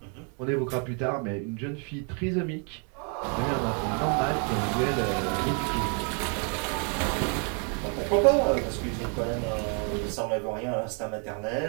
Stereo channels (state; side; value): quieter; left; 38.9 dB